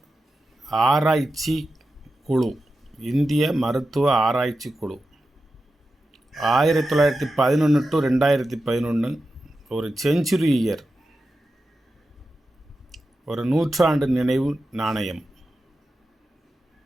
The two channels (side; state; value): both; normal; correlation 0.91